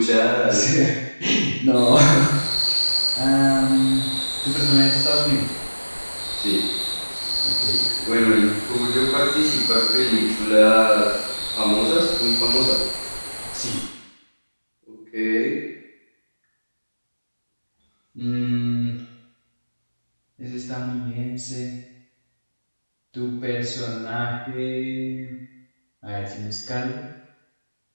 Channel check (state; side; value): inverted; both; correlation -1.00